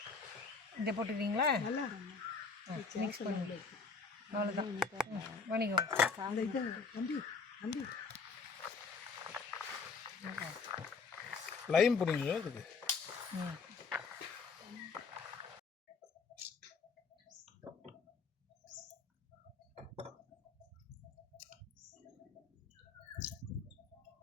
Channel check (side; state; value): right; quieter; 4.9 dB